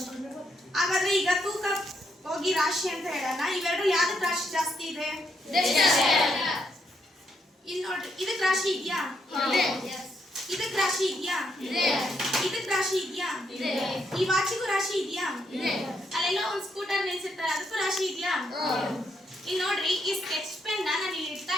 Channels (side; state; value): both; normal; correlation 0.77